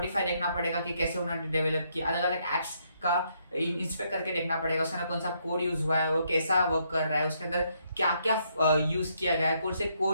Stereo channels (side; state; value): both; inverted; correlation -0.74